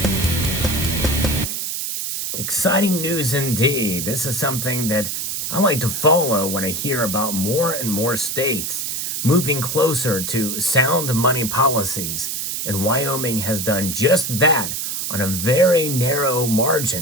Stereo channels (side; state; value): right; noise; hiss, 3 dB below the sound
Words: Exciting news indeed. This is something that I like to follow when I hear about more and more states moving closer to sound money policies. And Wyoming has done just that on a very narrow